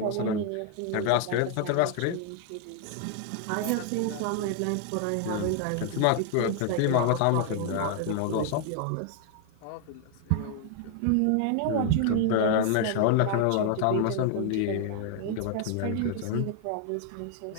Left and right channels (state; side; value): different; both; correlation 0.00